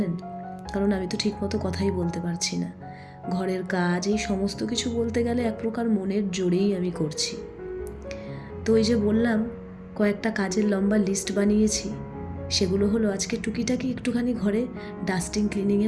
কারণ আমি তো ঠিকমতো কথাই বলতে পারছি না। ঘরের কাজ এই সমস্ত কিছু বলতে গেলে এক প্রকার মনের জোরেই আমি করছি। তো এই যে বললাম কয়েকটা কাজের লম্বা লিস্ট বানিয়েছি, সেগুলো হলো আজকে টুকিটাকি একটুখানি ঘরে ডাস্টিং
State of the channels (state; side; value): identical; both; correlation 1.00